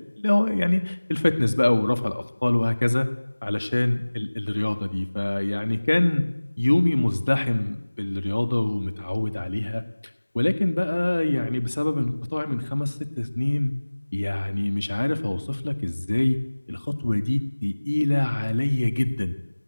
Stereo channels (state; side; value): inverted; both; correlation -1.00